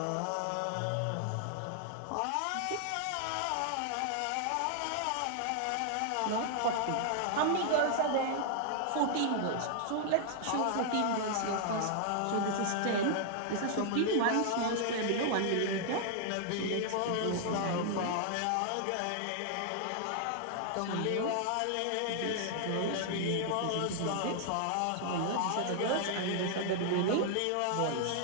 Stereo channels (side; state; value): both; different; correlation 0.00